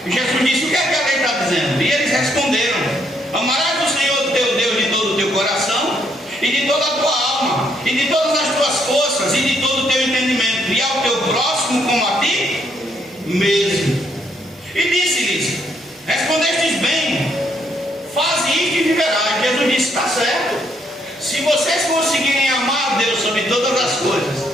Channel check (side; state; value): both; normal; correlation 0.72